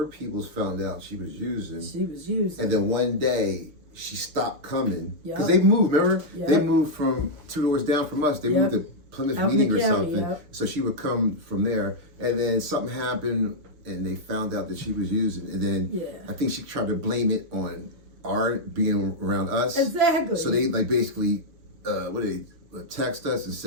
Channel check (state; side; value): late; left; 6.6 ms